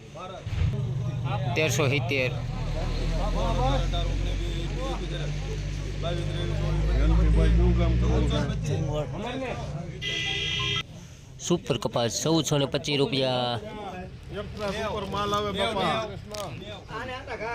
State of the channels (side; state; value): both; identical; correlation 1.00